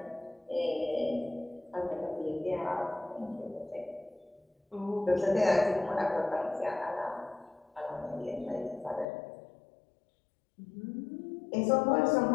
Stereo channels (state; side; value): drops out; right; at 9.1 s